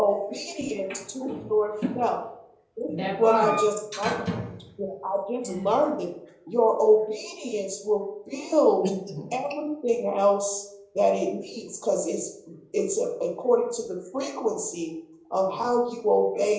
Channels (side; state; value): both; identical; correlation 1.00